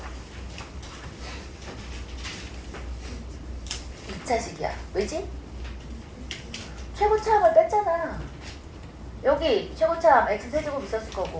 2차식이야. 왜지? 최고차항을 뺐잖아. 여기 최고차항 x세제곱 있었을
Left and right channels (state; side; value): identical; both; correlation 1.00